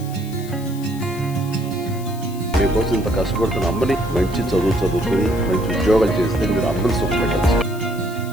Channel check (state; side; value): noise; left; hiss, 18 dB below the sound